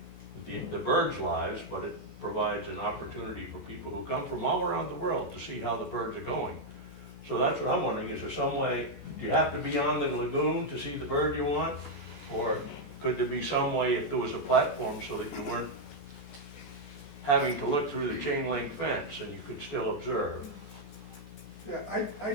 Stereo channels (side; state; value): right; late; 14 ms